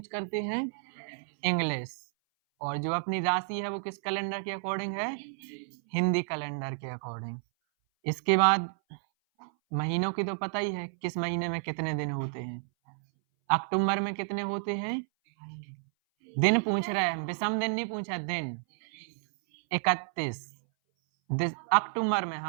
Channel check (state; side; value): silent; left; 57 dB below the other